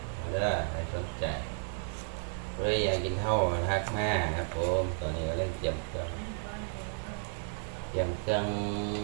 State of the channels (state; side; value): silent; left; 56 dB below the other